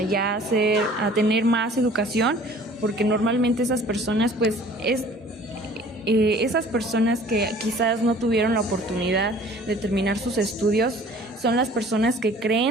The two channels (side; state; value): both; normal; correlation 0.50